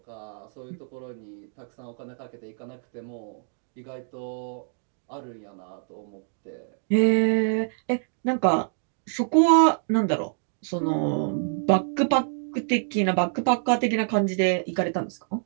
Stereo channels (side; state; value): left; silent; digital silence